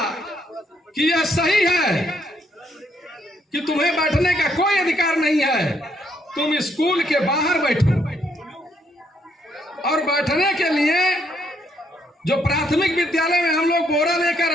कि यह सही है कि तुम्हें बैठने का कोई अधिकार नहीं है, तुम स्कूल के बाहर बैठो। और बैठने के लिए जो प्राथमिक विद्यालय में हम लोग बोरा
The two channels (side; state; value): both; normal; correlation 0.72